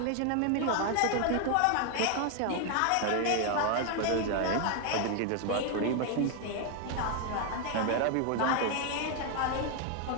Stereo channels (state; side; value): different; both; correlation 0.00